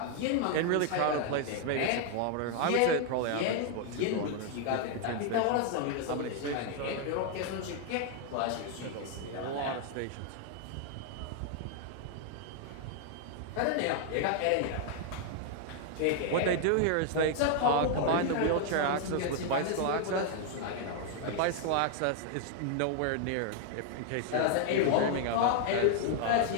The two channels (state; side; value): different; both; correlation 0.00